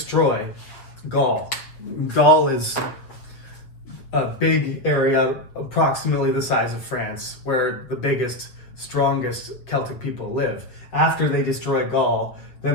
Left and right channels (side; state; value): right; late; 7.7 ms